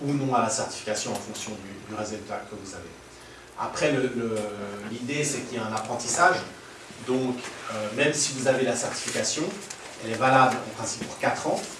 ou non à la certification en fonction du résultat que vous avez. Après, l'idée, c'est qu'il y a un apprentissage. Donc, même si vous avez la certification, elle est valable en principe pour 4 ans.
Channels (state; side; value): identical; both; correlation 1.00